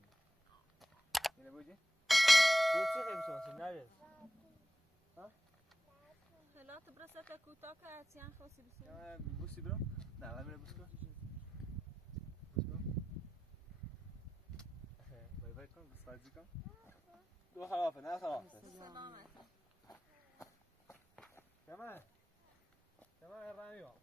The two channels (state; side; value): normal; both; correlation 0.92